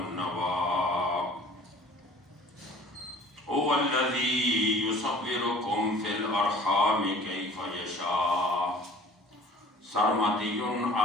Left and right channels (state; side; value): normal; both; correlation 0.48